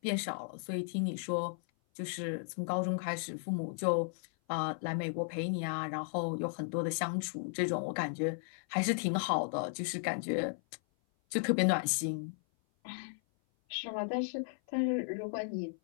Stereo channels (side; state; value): right; silent; 54 dB below the other